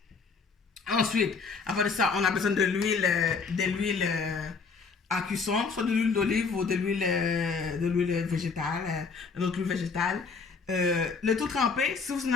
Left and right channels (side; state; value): right; quieter; 5.0 dB